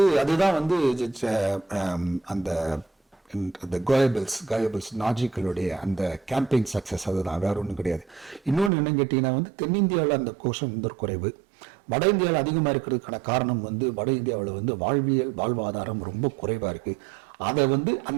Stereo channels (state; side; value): drops out; left; at 8.7 s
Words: அதுதான் வந்து அந்த கோயபிள்ஸ் நாஜிக்களுடைய அந்த கேம்பெயின் சக்சஸ். அதுதான், வேற ஒன்றும் கிடையாது. இன்னொன்று என்னன்னு கேட்டீங்கன்னா வந்து தென்னிந்தியாவில் அந்த கோஷம் வந்து குறைவு, வட இந்தியாவில் அதிகமாக இருக்கிறதுக்கான காரணம் வந்து வட இந்தியாவில் வந்து வாழ்வாதாரம் ரொம்ப குறைவா இருக்கு. அதை வந்து